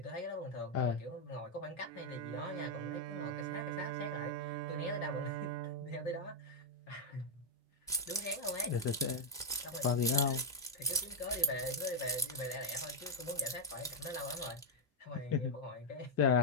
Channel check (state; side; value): normal; both; correlation -0.02